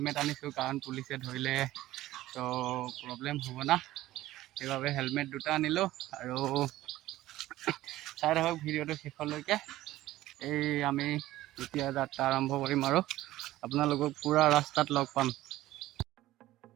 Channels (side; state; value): left; quieter; 15.7 dB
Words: আনিছোঁ কাৰণ পুলিচে ধৰিলে প্ৰব্লেম হ'ব না, সেইবাবে হেলমেট দুটা আনিলোঁ। আৰু চাই থাকক ভিডিঅ'টো শেষলৈকে। আমি এতিয়া যাত্ৰা আৰম্ভ কৰিম আৰু আপোনালোকক পুৰা ৰাস্তাত লগ পাম।